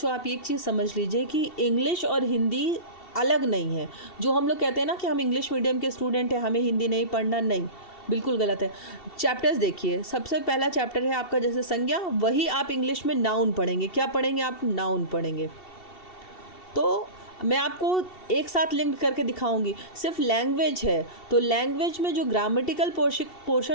आप एक चीज़ समझ लीजिए कि इंग्लिश और हिंदी अलग नहीं है। जो हम लोग कहते हैं ना कि हम इंग्लिश मीडियम के स्टूडेंट हैं, हमें हिंदी नहीं पढ़ना, नहीं, बिल्कुल गलत है। चैप्टर्स देखिए, सबसे पहला चैप्टर है आपका जैसे संज्ञा, वही आप इंग्लिश में नाउन पढ़ेंगे। क्या पढ़ेंगे आप? नाउन पढ़ेंगे। तो मैं आपको एक साथ लिंक करके दिखाऊंगी। सिर्फ लैंग्वेज है तो लैंग्वेज में जो ग्रामेटिकल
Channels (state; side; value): late; right; 2.7 ms